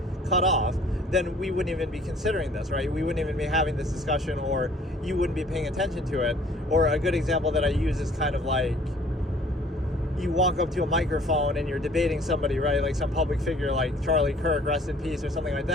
cut off, then we wouldn't even be considering this, right? We wouldn't even be having this discussion, or you wouldn't be paying attention to it. Or a good example that I use is kind of you walk up to a microphone and you're debating somebody, right? Some public figure like Charlie Kirk, rest in peace, or something like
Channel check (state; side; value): normal; both; correlation 0.55